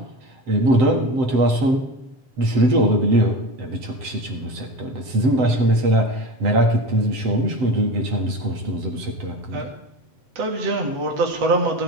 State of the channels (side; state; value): left; late; 7.7 ms